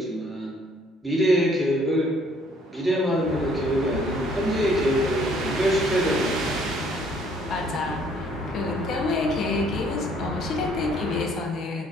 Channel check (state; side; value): normal; both; correlation 0.62